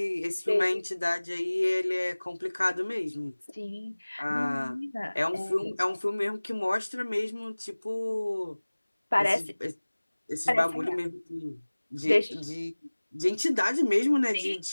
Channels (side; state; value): both; inverted; correlation -1.00